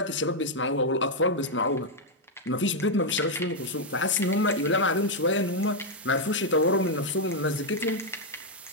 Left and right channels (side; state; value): both; normal; correlation -0.01